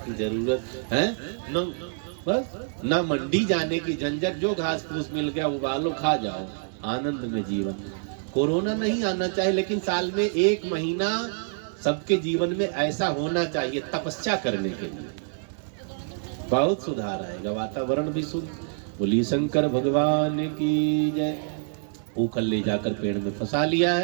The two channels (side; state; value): left; silent; digital silence